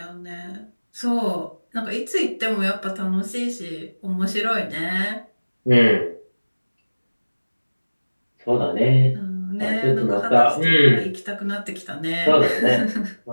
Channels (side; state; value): both; inverted; correlation -1.00